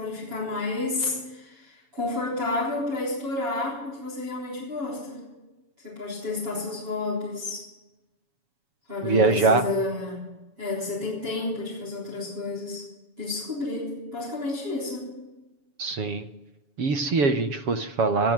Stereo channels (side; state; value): left; late; 7.1 ms